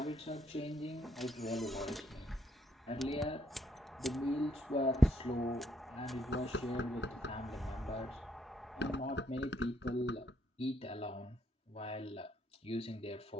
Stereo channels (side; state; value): both; normal; correlation 0.72